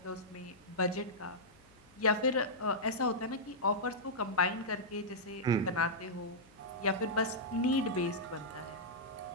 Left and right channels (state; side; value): noise; left; hum, 28 dB below the sound